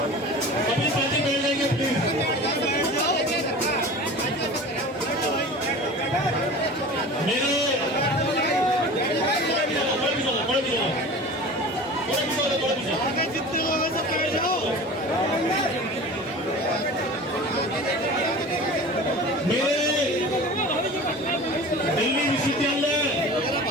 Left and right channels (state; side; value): normal; both; correlation 0.37